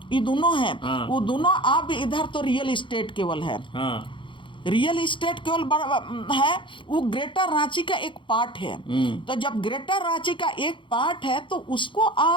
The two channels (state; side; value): late; right; 0.24 ms